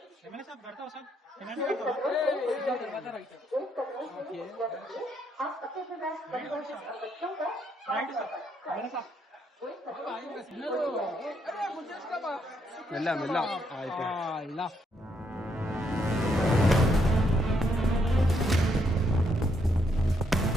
एमएलए साहब करता हो सर తర్వాత రైట్ राइट सर एमएलए साहब మెల్ల మెల్ల.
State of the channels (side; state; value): both; normal; correlation 0.75